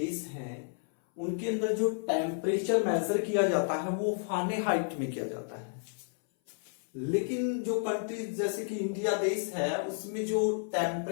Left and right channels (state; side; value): silent; right; 57 dB below the other